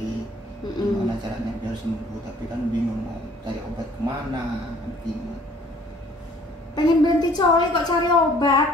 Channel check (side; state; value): both; normal; correlation 0.56